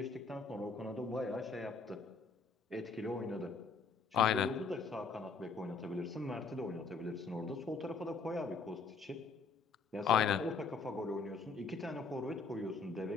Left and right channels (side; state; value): right; quieter; 4.6 dB